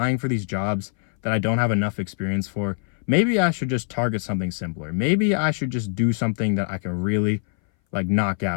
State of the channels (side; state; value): right; silent; 60 dB below the other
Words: for these jobs that I don't have enough experience for? Maybe I should just target something simpler. Maybe I should just do something that I can really like knock